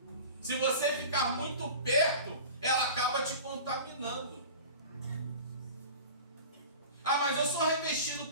Se você ficar muito perto, ela acaba te contaminando. Ah, mas eu sou revestido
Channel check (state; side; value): inverted; both; correlation -0.37